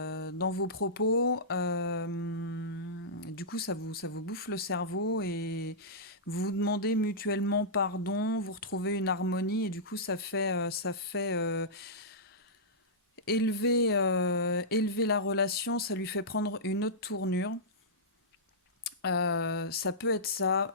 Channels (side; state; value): both; normal; correlation -0.15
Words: vos propos. Du coup, ça vous bouffe le cerveau et vous vous demandez mutuellement pardon, vous retrouvez une harmonie et du coup, ça fait élever la relation, ça lui fait prendre une autre tournure. Ça peut être ça,